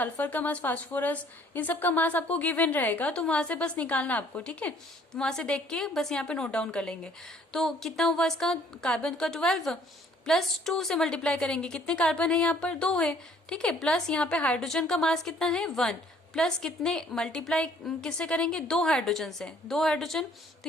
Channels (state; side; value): normal; both; correlation 0.59